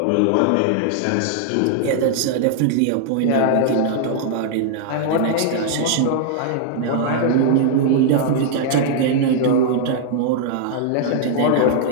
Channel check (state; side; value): different; both; correlation -0.01